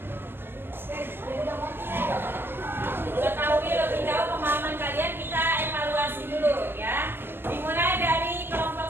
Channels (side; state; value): left; late; 0.10 ms